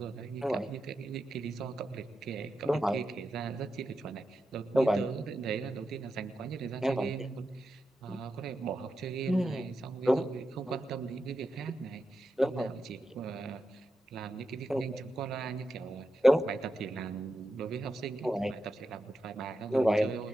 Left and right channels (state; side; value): normal; both; correlation 0.88